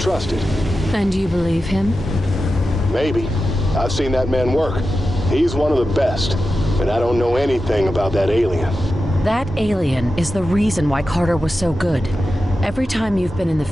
And you believe him? Maybe. I've seen that man work. He's one of the best. And I don't know anything about that alien. That alien is the reason why Carter was so good. Every time you've been in the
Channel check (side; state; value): both; normal; correlation 0.92